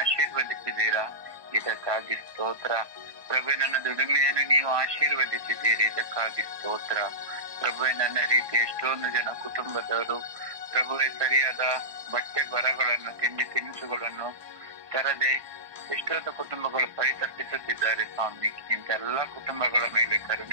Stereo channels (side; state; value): left; late; 1.2 ms